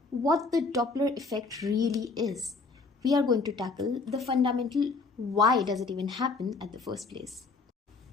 what the Doppler effect really is. We are going to tackle the fundamental why does it even happen at the first place.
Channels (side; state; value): right; quieter; 4.0 dB